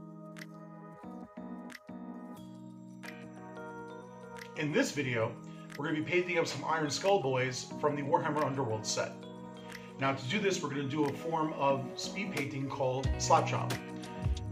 In this video, we're going to be painting up some Ironskull boys from the Warhammer Underworlds set. Now to do this, we're going to do a form of speed painting called slap chop.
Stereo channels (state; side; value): identical; both; correlation 1.00